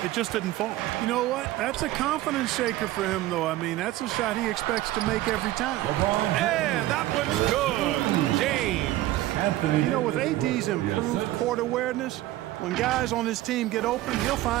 It just didn't fall. You know what? That's a confidence shaker for him, though. I mean, that's a shot he expects to make every time. And that one's good. James. You know, with AD's improved court awareness, when guys on his team get open, he'll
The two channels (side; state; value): left; quieter; 15.8 dB